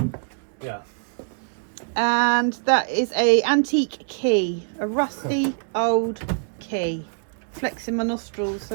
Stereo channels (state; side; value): silent; left; digital silence